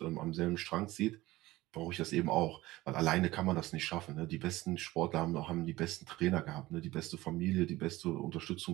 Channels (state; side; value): quieter; left; 18.3 dB